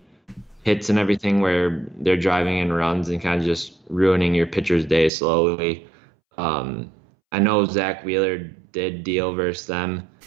hits and everything where they're driving in runs and kind of just ruining your pitcher's day slowly. I know Zach Wheeler did deal versus them,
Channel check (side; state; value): left; drops out; at 5.1 s